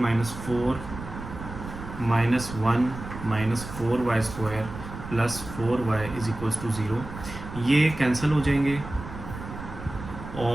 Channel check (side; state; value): right; noise; rumble, 11 dB below the sound